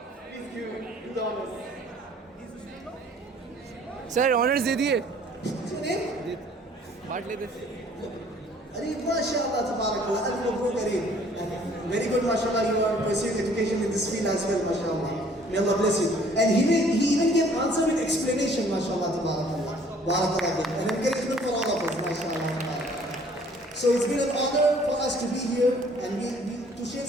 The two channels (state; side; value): normal; both; correlation 0.57